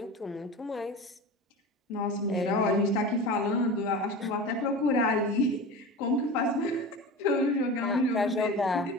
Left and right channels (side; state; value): both; normal; correlation 0.31